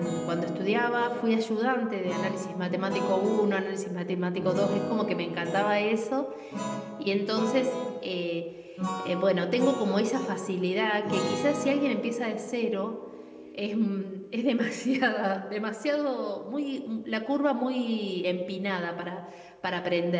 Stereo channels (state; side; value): identical; both; correlation 1.00